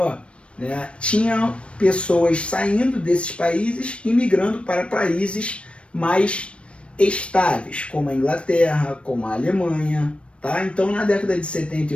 né, tinham pessoas saindo desses países e migrando para países mais estáveis, como a Inglaterra, como a Alemanha. Tá? Então, na década de 70 e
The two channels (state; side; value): late; right; 0.060 ms